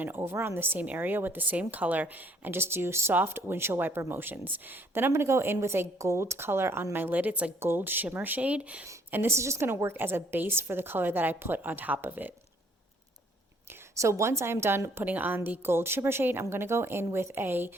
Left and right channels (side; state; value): both; normal; correlation 0.63